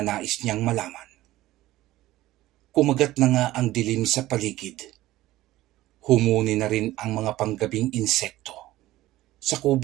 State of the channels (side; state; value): left; quieter; 16.3 dB